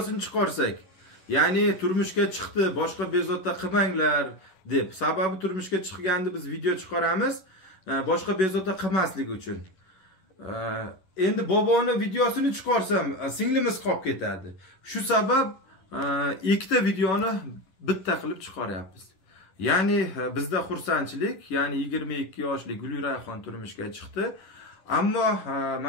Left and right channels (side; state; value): right; late; 11 ms